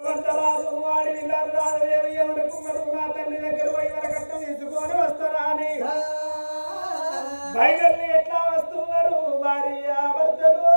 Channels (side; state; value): both; inverted; correlation -1.00